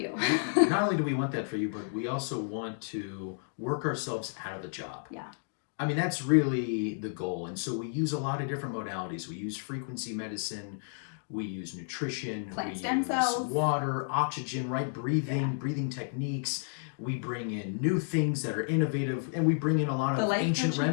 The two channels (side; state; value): right; silent; digital silence